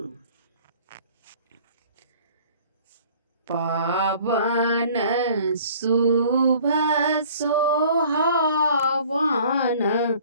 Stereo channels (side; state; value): both; inverted; correlation -0.51